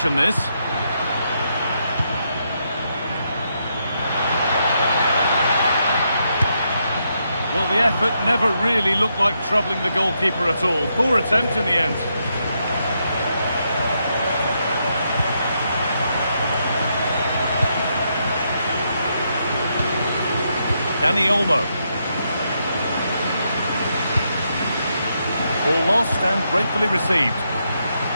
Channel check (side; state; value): both; inverted; correlation -0.80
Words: this. Well, the effort never really looked like troubling the goalkeeper at all. Poor attempt in the end. Dani Olmo. Ball lost and gratefully received.